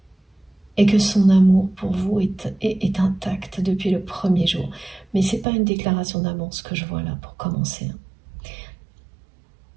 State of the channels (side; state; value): left; drops out; at 5.5 s